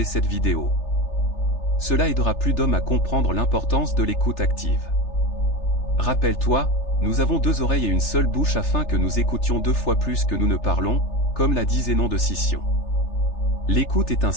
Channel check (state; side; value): late; right; 3.4 ms